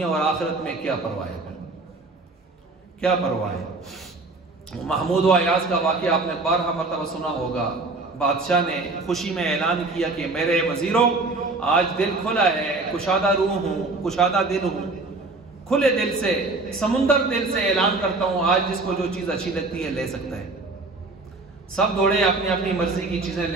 اور آخرت میں کیا پرواہ ہے، کیا پرواہ ہے۔ محمود و ایاز کا واقعہ آپ نے 12 مرتبہ سنا ہوگا، بادشاہ نے خوشی میں اعلان کیا کہ میرے وزیروں آج دل کھلا ہے، کشادہ روح ہوں، کشادہ دل ہوں، کھلے دل سے، سمندر دل سے اعلان کرتا ہوں، آج جس کو جو چیز اچھی لگتی ہے لے سکتا ہے۔ سب دوڑے اپنی اپنی مرضی کی چیزیں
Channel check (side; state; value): left; quieter; 3.4 dB